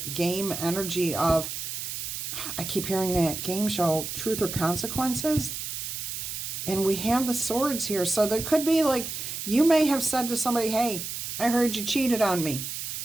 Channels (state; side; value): noise; right; hiss, 5 dB below the sound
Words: game energy of, I keep hearing that game show, Truth or Consequences. And we have the swords here. So there could be like, you may have said to somebody, hey, I heard you cheated on me.